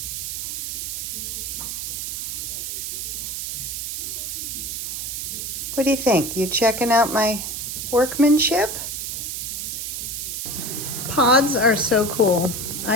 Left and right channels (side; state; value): right; noise; hiss, 4 dB below the sound